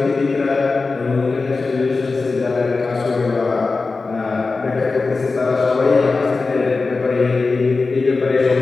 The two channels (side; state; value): right; quieter; 4.0 dB